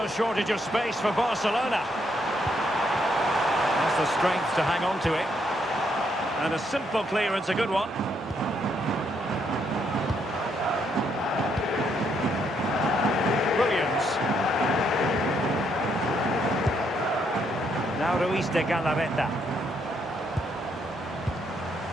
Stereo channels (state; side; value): normal; both; correlation 0.74